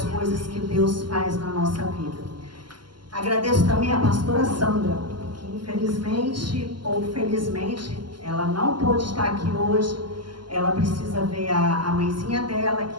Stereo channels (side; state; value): left; late; 0.71 ms